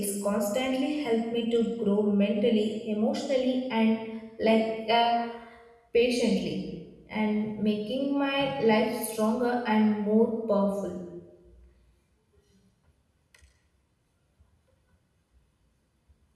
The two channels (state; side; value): identical; both; correlation 1.00